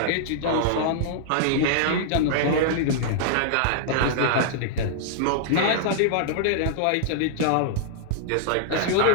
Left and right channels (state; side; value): different; both; correlation -0.01